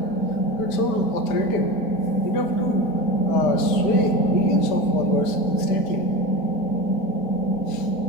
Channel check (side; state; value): right; late; 5.0 ms